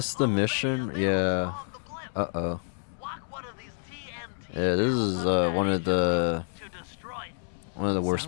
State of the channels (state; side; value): silent; right; digital silence